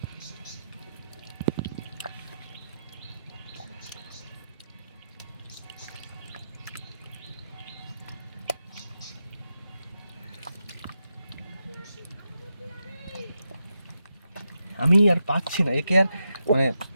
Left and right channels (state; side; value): inverted; both; correlation -0.86